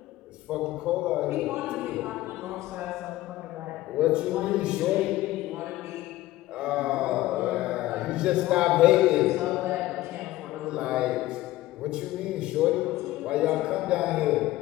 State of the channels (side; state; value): right; quieter; 16.4 dB